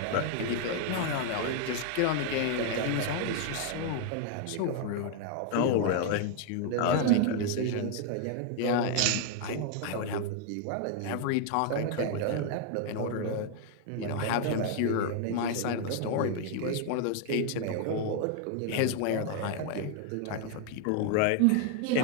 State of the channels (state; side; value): different; both; correlation 0.00